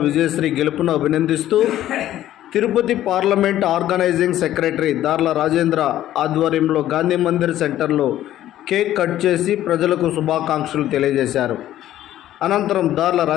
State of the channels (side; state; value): right; quieter; 12.9 dB